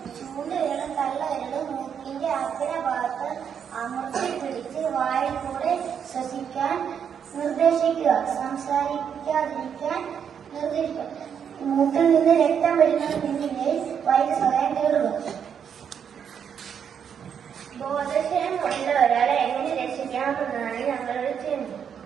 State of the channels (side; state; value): left; quieter; 7.8 dB